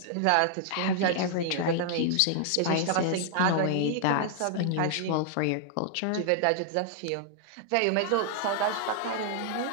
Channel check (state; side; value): different; both; correlation -0.01